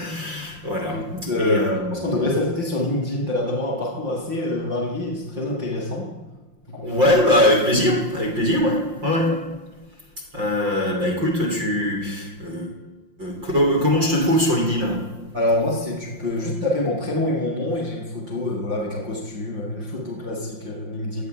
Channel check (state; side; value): late; left; 5.7 ms